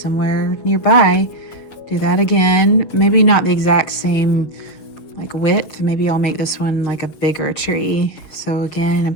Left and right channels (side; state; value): right; late; 6.8 ms